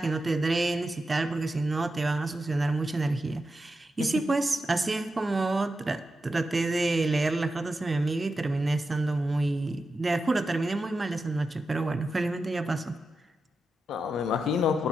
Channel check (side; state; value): both; normal; correlation 0.89